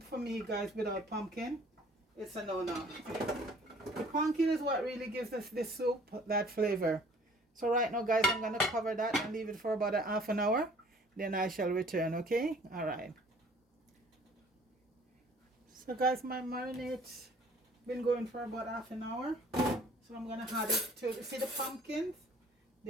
for me, guys, without pumpkin, it's a no-no. The pumpkin is what really gives us this soup that flavor. So right now, guys, I'm gonna cover that and leave it for about a half an hour. Then I shall return. Okay, all right. So guys, my marinade's been going for about half an hour. So I'm gonna add it to, see the pumpkins?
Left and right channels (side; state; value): both; normal; correlation 0.54